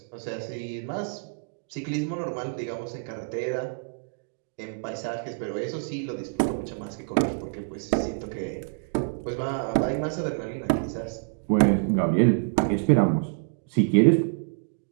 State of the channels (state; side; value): silent; left; digital silence